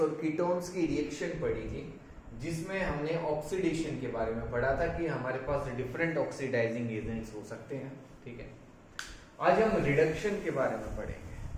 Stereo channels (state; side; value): identical; both; correlation 1.00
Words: कीटोन्स की रिएक्शन पढ़ी थी, जिसमें हमने ऑक्सीडेशन के बारे में पढ़ा था कि हमारे पास डिफरेंट ऑक्सीडाइजिंग एजेंट्स हो सकते हैं। ठीक है, आज हम रिडक्शन के बारे में पढ़ेंगे